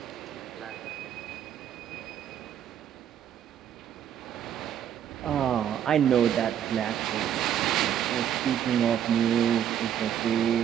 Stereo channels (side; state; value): left; quieter; 9.8 dB